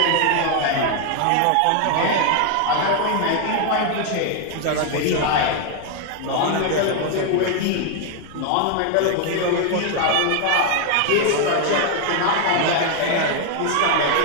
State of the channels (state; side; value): different; both; correlation 0.00